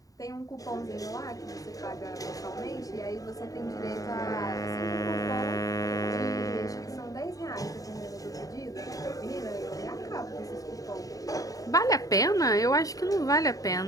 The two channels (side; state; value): right; late; 0.17 ms